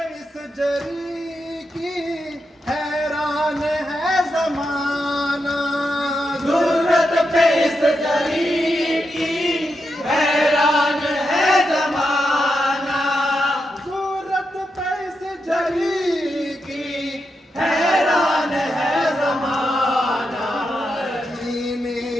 इस जरी की हैरान है जमाना। ज़रूरत पे इस जरी की हैरान है ज़माना। जुर्रत पे इस जरी की हैरान है ज़माना। जीने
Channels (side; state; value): both; normal; correlation 0.86